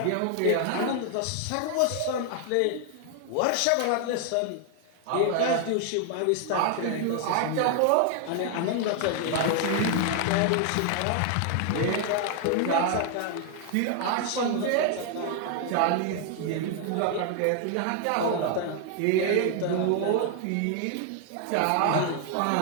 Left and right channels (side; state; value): both; different; correlation 0.00